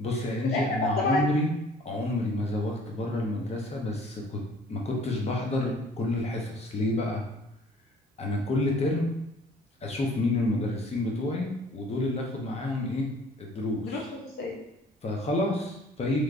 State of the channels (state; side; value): normal; both; correlation 0.54